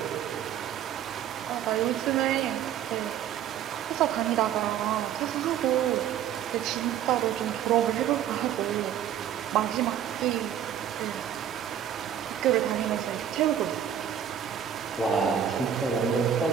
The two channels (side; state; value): left; quieter; 9.6 dB